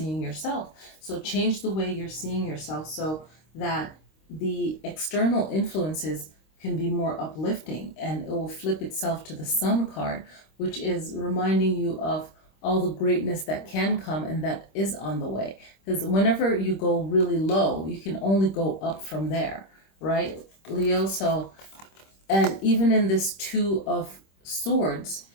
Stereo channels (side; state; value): right; late; 26 ms